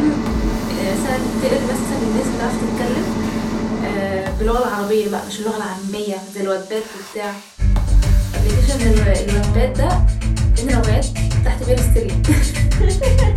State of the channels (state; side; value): identical; both; correlation 1.00